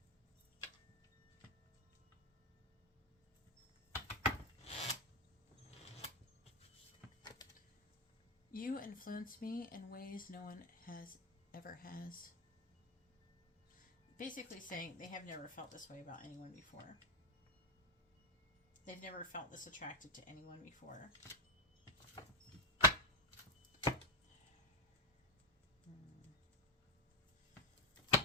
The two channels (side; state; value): both; normal; correlation 0.05